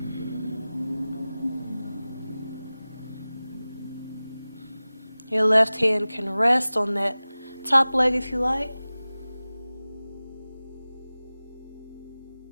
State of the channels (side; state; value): both; inverted; correlation -0.98